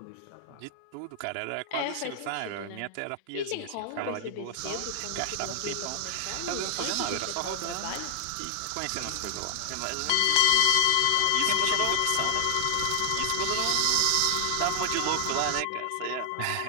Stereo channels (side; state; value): both; different; correlation 0.00